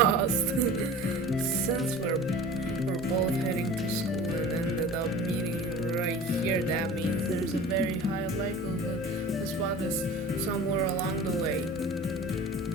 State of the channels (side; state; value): both; normal; correlation 0.39